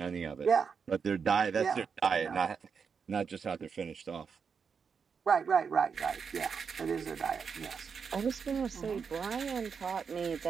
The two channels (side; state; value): left; quieter; 6.1 dB